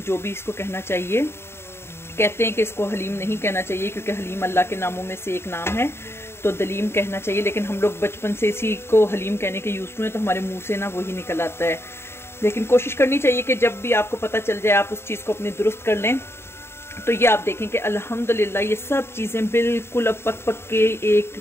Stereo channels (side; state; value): right; late; 0.12 ms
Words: जो भी इसको कहना चाहिए। कहते हैं कि इसको हलीम नहीं कहना चाहिए क्योंकि हलीम अल्लाह के नामों में से एक नाम है, तो दलीम कहना चाहिए। लेकिन हम लोग बचपन से इसी को हलीम कहने के यूज़ हुए, तो हमारे मुंह से ना वही निकल आता है। लेकिन कोशिश करनी चाहिए कि जब भी आपको पता चल जाए आप उस चीज़ को अपनी दुरुस्त कर लें। तो ये आप देखें कि अल्हम्दुलिल्लाह ये सब चीज़ें बिल्कुल अब पक पक के